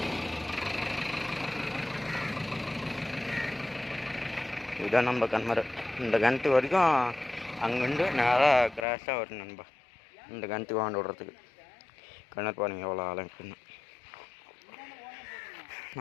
இதுதான் நம்ம கிணறு. இந்த கிணத்து வரைக்கும் அங்கேருந்து நேராக கிராஸாக வரும் நண்பா. இந்த கிணத்துக்கு வாண்டு விடுறதுக்கு. கிணறு பாருங்க எவ்வளோ ஆழம் இருக்குன்னு.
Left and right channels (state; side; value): drops out; right; at 8.8 s